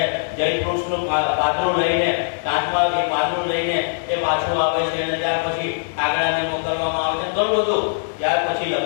જયવૃક્ષનું પાતળું લઈને કાંચમાં એ પાતળું લઈને એ પાછું આવે છે. અને ત્યાર પછી કાગડાને મોકલવામાં આવે છે. ઘણું બધું ત્યાર પછી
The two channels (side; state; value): right; silent; digital silence